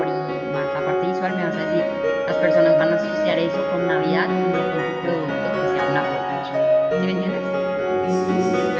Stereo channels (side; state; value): both; identical; correlation 1.00